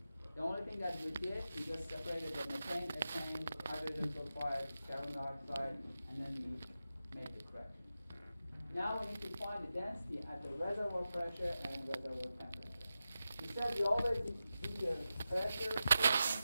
The only thing that we did, we just separated the methane, ethane, hydrogen sulfide, carbon dioxide, and then we made the correction. Now we need to find the density at the reservoir pressure and reservoir temperature. We said we always do the pressure correction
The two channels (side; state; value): both; inverted; correlation -0.92